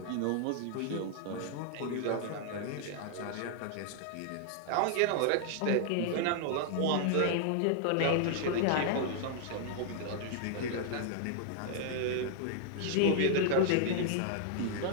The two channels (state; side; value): different; both; correlation 0.00